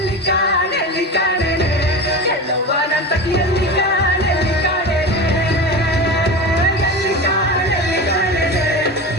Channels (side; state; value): both; normal; correlation 0.27